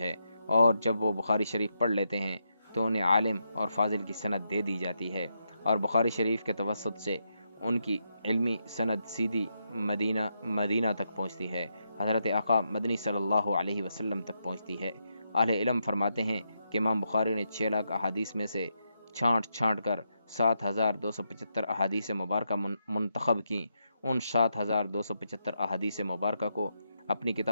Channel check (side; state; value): both; inverted; correlation -0.82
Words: اور جب وہ بخاری شریف پڑھ لیتے ہیں تو انہیں عالم اور فاضل کی سند دے دی جاتی ہے، اور بخاری شریف کے توسط سے ان کی علمی سند سیدھی مدینہ تک پہنچتی ہے، حضرت آقا مدنی صلی اللہ علیہ وسلم تک پہنچتی ہے۔ اہل علم فرماتے ہیں کہ امام بخاری نے 6 لاکھ احادیث میں سے چھانٹ کر 7275 احادیث مبارکہ منتخب کی۔ ان 7275 احادیث مبارکہ کو اپنی